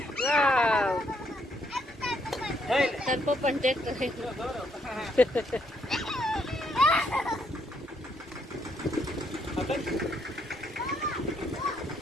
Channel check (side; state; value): both; normal; correlation 0.73